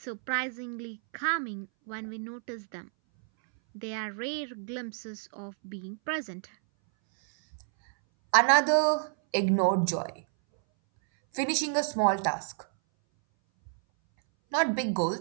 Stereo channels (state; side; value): silent; left; 58 dB below the other